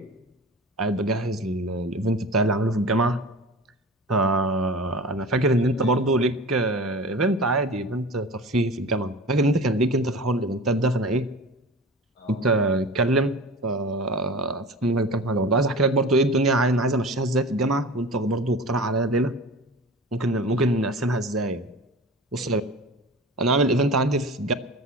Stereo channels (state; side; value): normal; both; correlation 0.36